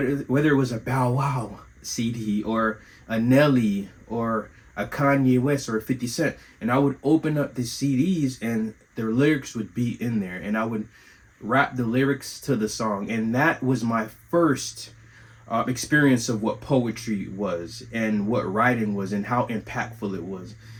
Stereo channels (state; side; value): identical; both; correlation 1.00